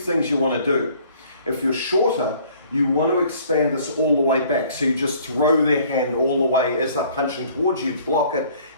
you want to do. If you're shorter, you want to expand this all the way back. So you just throw their hand all the way as they're punching towards you, block it,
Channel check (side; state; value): both; inverted; correlation -0.56